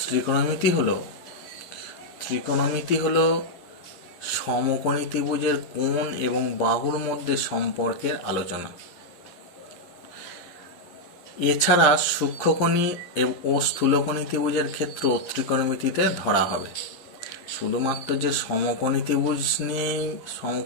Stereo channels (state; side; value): late; right; 11 ms